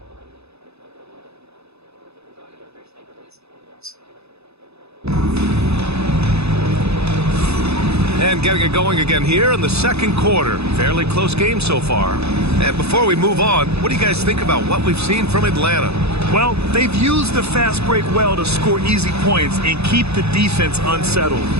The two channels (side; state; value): left; late; 0.79 ms